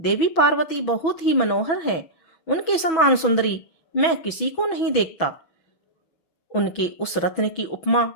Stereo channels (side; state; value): right; late; 6.1 ms